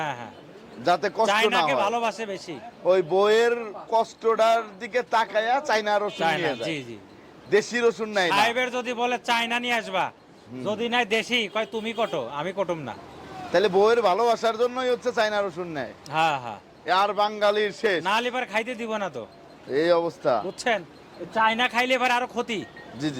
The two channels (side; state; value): both; identical; correlation 1.00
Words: হ্যাঁ, যাতে কষ্ট না চায়নাকে হয়। ভালোবাসে বেশি। ওই বইয়ের কষ্টটার দিকে তাকায়া চায়না রসুন চায়না, নিয়ে জি যায়, জি। দেশি রসুন নাই না। সাহেবের যদি বলে চায়না নিয়ে আসবা, যদি নাই দেশি, কয় তুমি কটো, আমি কটুম না। তাহলে বইয়ের ভালোবাসার জন্যই হচ্ছে চায়না রসুন নেয়, হ্যাঁ হ্যাঁ, আর বাঙালির শেষ না লিবার খাইতে দিব না তো, এই অবস্থা। বুঝছেন? চায়না খাইলে এবার আরো ক্ষতি, জি জি,